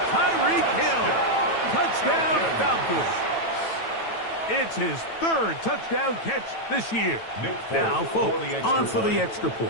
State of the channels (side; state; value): right; late; 9.1 ms